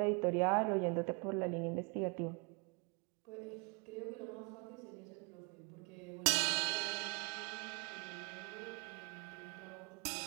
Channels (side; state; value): left; quieter; 32.1 dB